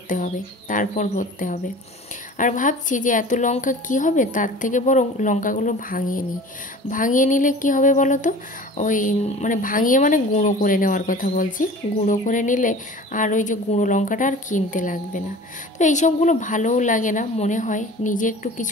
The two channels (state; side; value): normal; both; correlation 0.41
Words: হবে, তারপর ভরতে হবে। আর ভাবছি যে এত লঙ্কা কি হবে, তার থেকে বরং লঙ্কাগুলো ভাঙিয়ে নিই। ভাঙিয়ে নিলে কি হবে বলো তো, ওই মানে ভাঙিয়ে মানে গুঁড়ো করে নেওয়ার কথা বলছি। গুঁড়ো করে নিলে আর ওই যে গুঁড়ো লঙ্কাটা আর কিনতে লাগবে না। তো এইসবগুলো ভালোও লাগে না, মনে হয় নিজে একটু